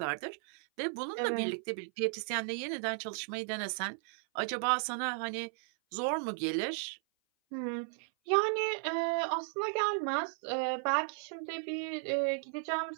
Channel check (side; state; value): left; silent; 54 dB below the other